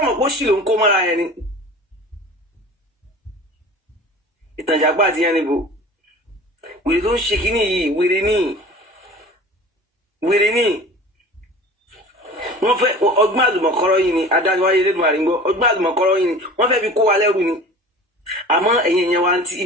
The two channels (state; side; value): normal; both; correlation 0.40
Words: pé ó sì ló ń kó mọ́ra ẹni ìtànjàgbá àti yẹn níbo wèrè tó ń ṣe kínní yìí wèrè ní wọ́n fẹ́ ọgbọ́n àlùmọ̀kọ́rọ́ yìí ni adájọ́ wáyé lẹ́dùn àrígbọ́ ọgbọ́n àlùmọ̀kọ́rọ́ yìí ni wọ́n fẹ́ fi kó wa lẹ́rù ni àmọ́ ẹ̀yin èèyàn wa